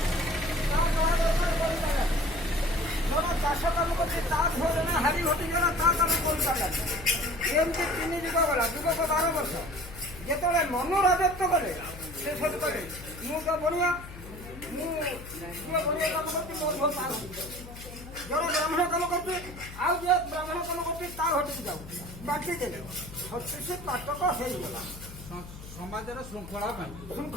ଜଣେ ଚାଷ କାମ କରୁଛି, ତା ଝିଅ ଜଣେ ହାରି ଘଟିଗଲା, ତା କାମ କରିପାରିଲାନି। ଏମିତି 3 ଯୁଗ ଗଲା, ଯୁଗକ 12 ବର୍ଷ। ଯେତେବେଳେ ମନୁ ରାଜତ୍ୱ କଲେ, ସେ ସବୁ କଲେ ମୁଁ ତ ବଢିଆ, ମୁଁ ବଢିଆ କାମ କରୁଛି, ମୋର ବହୁତ ପାର ଜଣେ ବ୍ରାହ୍ମଣ କାମ କରୁଛି, ଆଉ ଯିଏ ବ୍ରାହ୍ମଣ କାମ କରୁଛି ତା ଘଟିକି ଯାଉ ବାଟି ଦେଲେ। 36 ପାଟକ ହେଇଗଲା ସମାଜର ଶୃଙ୍ଖଳା ପାଇଁ।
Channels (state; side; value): noise; left; hum, 14 dB below the sound